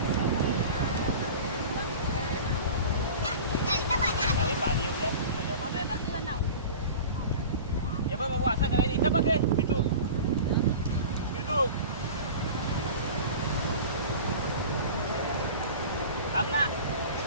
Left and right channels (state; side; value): inverted; both; correlation -0.36